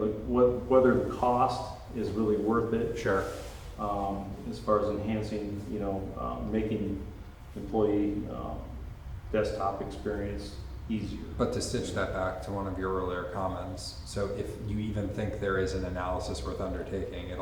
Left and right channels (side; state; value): both; identical; correlation 1.00